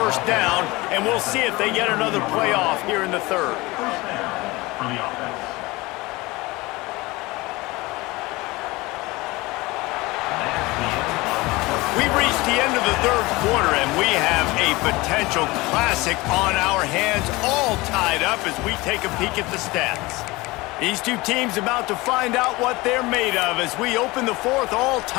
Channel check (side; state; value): right; quieter; 21.9 dB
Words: down, and we'll see if they get another playoff here in the 3rd. We've reached the end of the 3rd quarter, and we have a potential classic on our hands, all tied up as we take a peek at the stats. These two teams about to find out what they're made of as we open the 4th, all